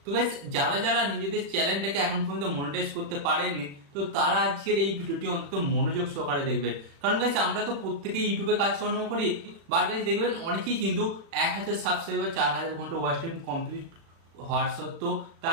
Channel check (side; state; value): left; late; 36 ms